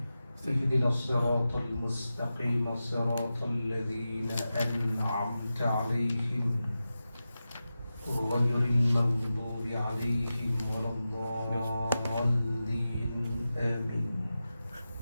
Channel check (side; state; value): both; inverted; correlation -0.93